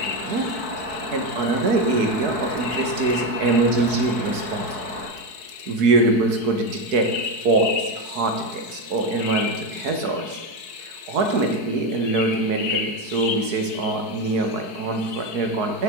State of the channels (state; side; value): late; left; 4.6 ms